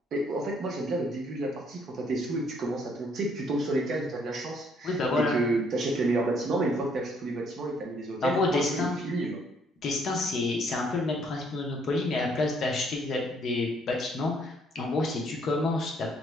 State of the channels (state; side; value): normal; both; correlation 0.66